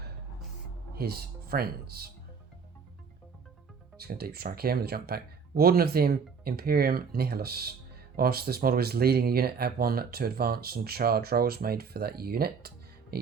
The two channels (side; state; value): left; quieter; 5.8 dB